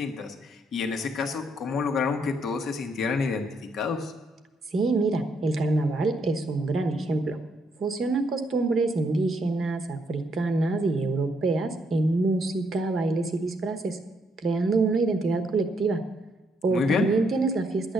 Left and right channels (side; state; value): both; normal; correlation 0.74